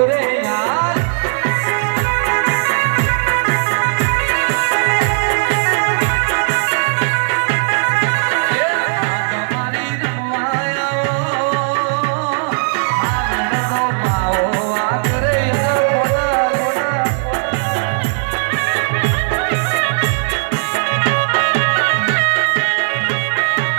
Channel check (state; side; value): silent; left; digital silence